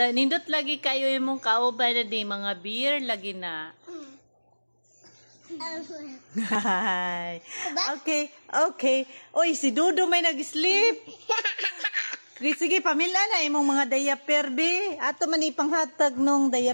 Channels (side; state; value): both; inverted; correlation -1.00